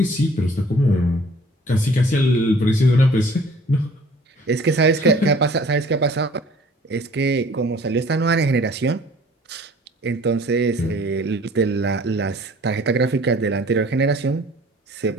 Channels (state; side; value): normal; both; correlation 0.52